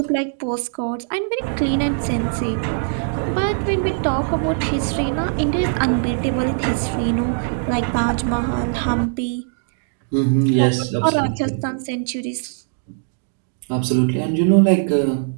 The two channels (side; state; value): left; silent; digital silence